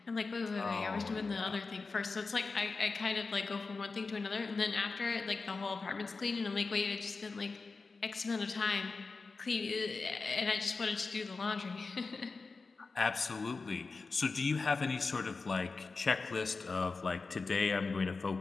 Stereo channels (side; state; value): right; quieter; 4.2 dB